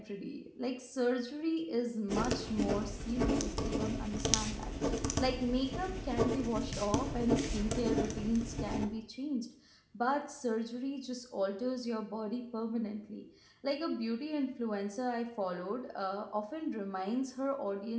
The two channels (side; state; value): both; identical; correlation 1.00